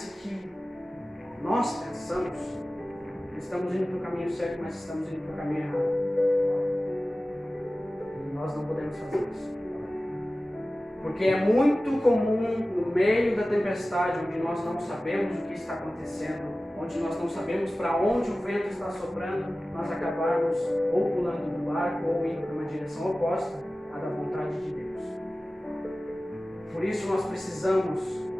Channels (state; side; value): normal; both; correlation 0.96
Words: que nós pensamos que estamos indo para o caminho certo, mas estamos indo para o caminho errado. E nós não podemos fazer isso. Porque é muito comum no meio da tempestade, onde nós não sabemos o que está acontecendo, onde nós não sabemos para onde o vento está soprando, nós acabarmos ou pulando do barco ou indo para uma direção oposta à da vontade de Deus. Por isso nós precisamos,